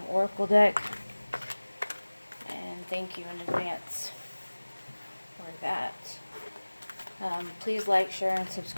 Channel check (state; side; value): inverted; both; correlation -1.00